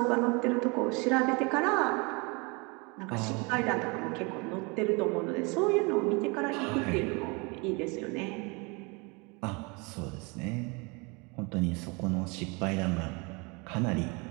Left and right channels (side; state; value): left; quieter; 29.1 dB